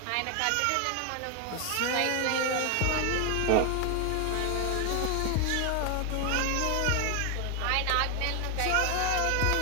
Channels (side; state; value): both; different; correlation 0.01